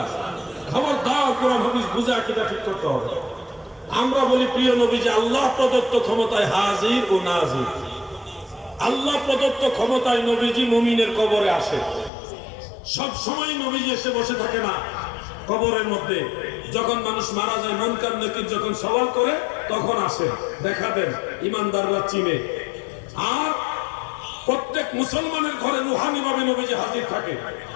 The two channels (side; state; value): right; drops out; at 12.1 s